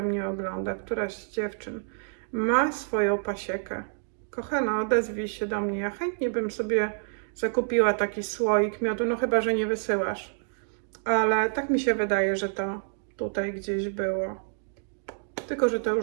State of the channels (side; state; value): left; silent; digital silence